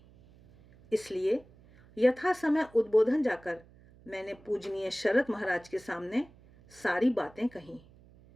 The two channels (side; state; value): right; noise; hum, 25 dB below the sound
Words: इसलिए यथा समय उद्बोधन जाकर मैंने पूजनीय शरत महाराज के सामने सारी बातें कहीं।